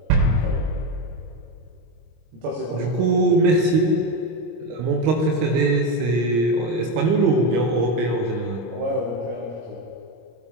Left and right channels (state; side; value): late; left; 26 ms